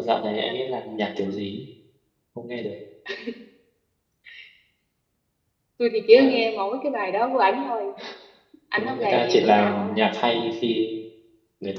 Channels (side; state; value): both; identical; correlation 1.00